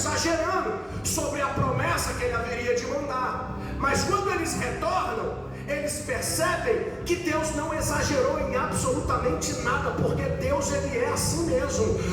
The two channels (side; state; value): both; identical; correlation 1.00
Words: sobre a promessa que Ele haveria de mandar. Mas quando eles retornam, eles percebem que Deus não exagerou em absolutamente nada, porque Deus, Ele é assim mesmo.